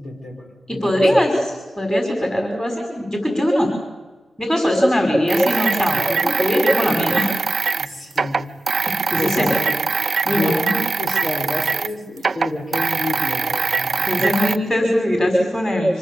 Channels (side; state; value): both; normal; correlation 0.92